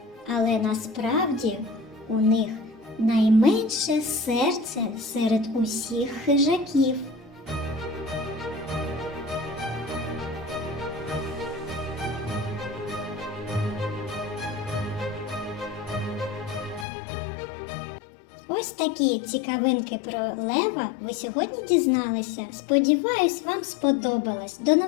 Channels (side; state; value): right; drops out; at 16.9 s